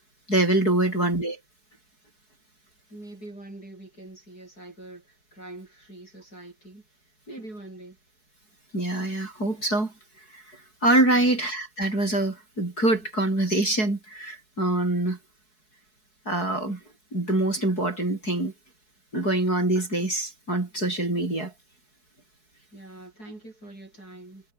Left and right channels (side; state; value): right; late; 4.7 ms